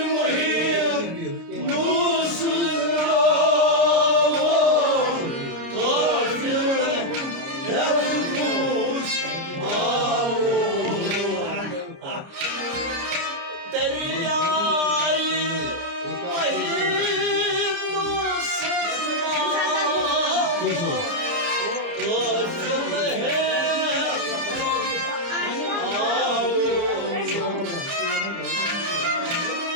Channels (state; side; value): late; left; 29 ms